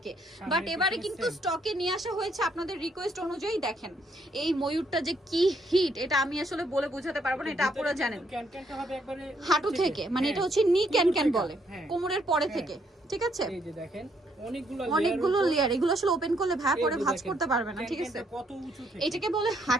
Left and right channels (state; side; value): normal; both; correlation 0.71